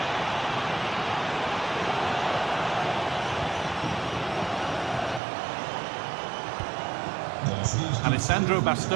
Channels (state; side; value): drops out; left; at 5.2 s